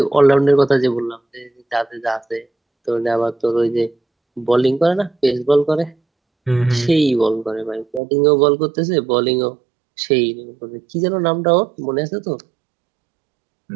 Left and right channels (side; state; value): left; drops out; at 8.0 s